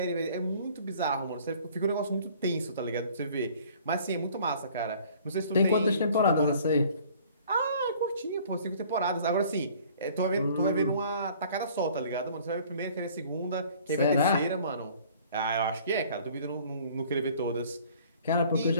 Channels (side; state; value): both; inverted; correlation -0.53